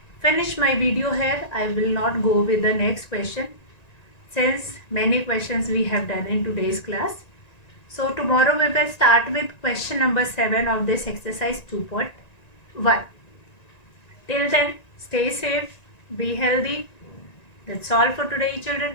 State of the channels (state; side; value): late; right; 1.9 ms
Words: finish my video here. I will not go with the next question, since many questions we have done in today's class. So tomorrow we will start with question number 7 of this exercise 2.1. Till then, stay safe, be healthy. That's all for today,